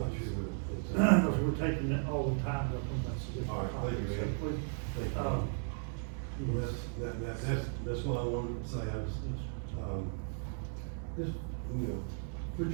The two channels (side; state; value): left; silent; 54 dB below the other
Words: sure what it's. because we're taking it all the time up on that. All right, thank you, man. Please. Thank you. Well, that's what I wanted to say, I was, just, put